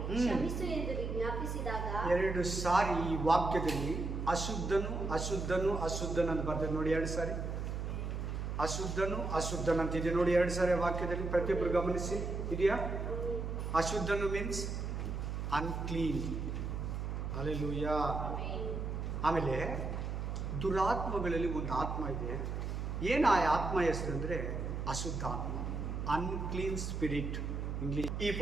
ಕ್ಷಮಿಸು ಎಂದು ವಿಜ್ಞಾಪಿಸಿದಾಗ 2 ಸಾರಿ ಈ ವಾಕ್ಯದಲ್ಲಿ ಅಶುದ್ಧನು ಅಶುದ್ಧನು ಅಶುದ್ಧನಂತ ಬರ್ತದೆ ನೋಡಿ. 2 ಸಾರಿ ಅಶುದ್ಧನು ಅಶುದ್ಧನಂತಿದೆ ನೋಡಿ. 2 ಸಾರಿ ವಾಕ್ಯದಲ್ಲಿ ಪ್ರತಿಯೊಬ್ಬರು ಗಮನಿಸಿ. ಇದೆಯಾ? ಅಶುದ್ಧನು ಮೀನ್ಸ್ ಅನ್ಕ್ಲೀನ್. ಹಲ್ಲೆಲೂಯಾ. ಆಮೇಲೆ ದುರಾತ್ಮಗಳಲ್ಲಿ ಒಂದು ಆತ್ಮ ಇದೆ. ಏನು ಆ ಆತ್ಮ ಹೆಸರು ಅಂದರೆ ಅಶುದ್ಧ ಆತ್ಮ, ಅನ್ಕ್ಲೀನ್ ಸ್ಪಿರಿಟ್ ಇಂಗ್ಲಿಷ್. ಈ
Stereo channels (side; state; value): right; noise; hum, 3 dB below the sound